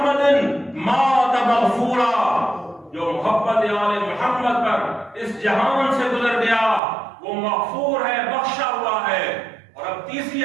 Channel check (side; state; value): left; drops out; at 6.8 s